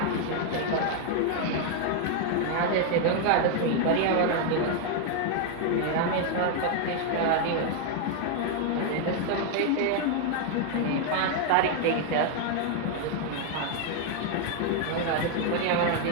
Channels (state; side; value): different; both; correlation 0.00